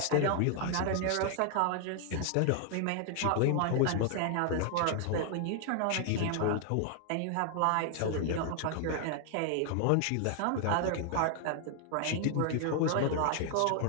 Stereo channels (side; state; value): both; different; correlation 0.00